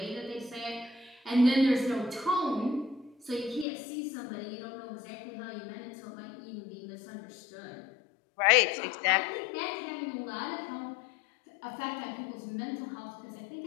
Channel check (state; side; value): drops out; right; at 3.7 s